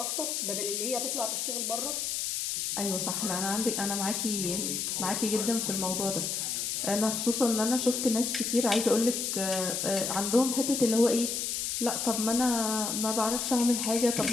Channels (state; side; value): noise; left; hiss, 1 dB below the sound